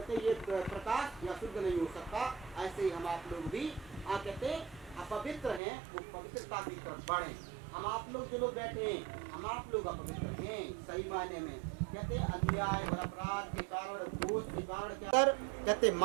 ये प्रकाश या शुद्ध नहीं हो सकता। ऐसे ही हम आप लोग भी कहते अपवित्र हैं, वो पवित्रता की तरफ बढ़े। हम आप लोग जो लोग बैठे हैं, हम आप लोग अपवित्र हैं सही मायने में। कहते अन्याय और अपराध के कारण, दोष के कारण क्या? कहते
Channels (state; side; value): drops out; left; at 5.6 s